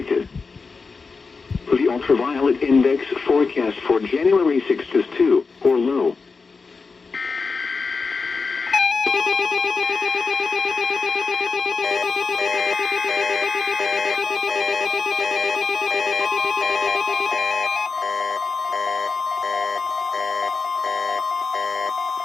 The ultraviolet index forecast for January 6th is 2 or low.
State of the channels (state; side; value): quieter; right; 4.6 dB